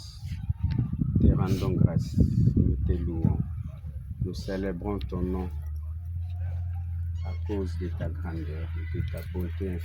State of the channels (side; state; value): both; identical; correlation 1.00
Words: te rendons grâce, nous te louons. Nous célébrons ton nom à cause de ta grandeur, de ta bonté